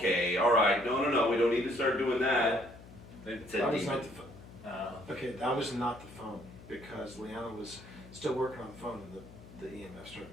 all right. No. We don't need to start doing that. It's a That was demon. not the phone. Okay, that was not the phone, because Leanna was still working on the phone and the EMF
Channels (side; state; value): left; noise; hum, 18 dB below the sound